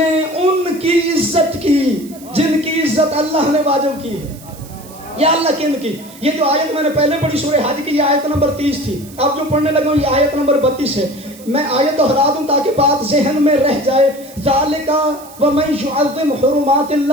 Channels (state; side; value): noise; right; hiss, 21 dB below the sound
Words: ان کی عزت کی جن کی عزت اللہ نے واجب کی ہے، یا اللہ کن کی؟ یہ جو آیت میں نے پہلے پڑھی سورہ حج کی، یہ آیت نمبر 30 تھی، اب جو پڑھنے لگا ہوں یہ آیت نمبر 32 ہے۔ میں آیت دہرا دوں تاکہ بات ذہن میں رہ جائے۔ ذالک ومن یعظم حرمات